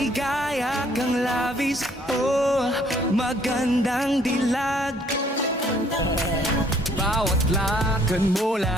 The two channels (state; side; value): normal; both; correlation 0.62